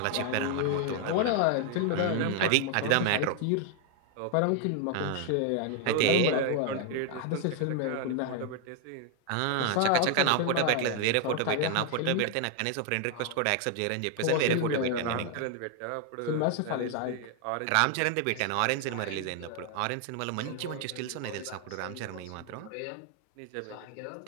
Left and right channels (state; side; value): different; both; correlation 0.00